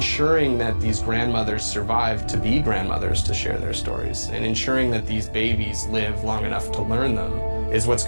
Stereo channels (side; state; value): both; inverted; correlation -1.00